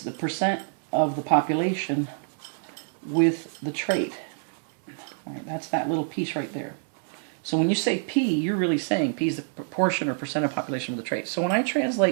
the percent of the population with the trait. All right, that's that little piece right there. So when you say P, you're really saying P is the proportion or percent of population with the trait. So when I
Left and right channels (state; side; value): silent; left; 60 dB below the other